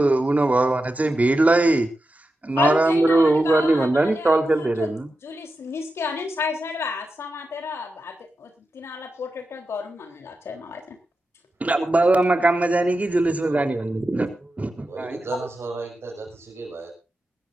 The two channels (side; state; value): both; normal; correlation 0.90